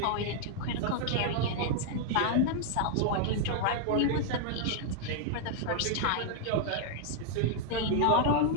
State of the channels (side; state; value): both; different; correlation -0.01